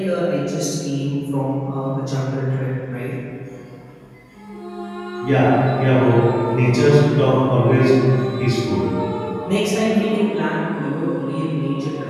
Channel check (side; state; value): both; identical; correlation 1.00